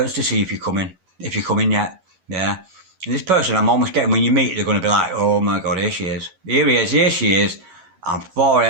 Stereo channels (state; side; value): late; left; 11 ms